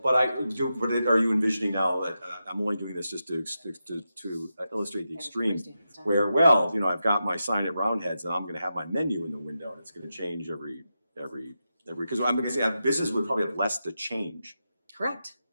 But are you envisioning now that, I'm only doing this just to illustrate the extreme, where, well, you know, I've got my sign at Roundheads and I'm gonna have my menu in the window and it's gonna change every, because I'm gonna say, a business would probably have less to change. Correct.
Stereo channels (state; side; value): inverted; both; correlation -0.88